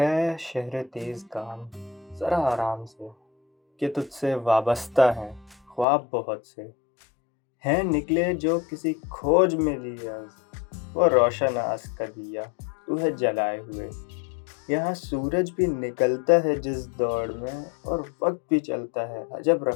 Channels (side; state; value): right; drops out; at 5.9 s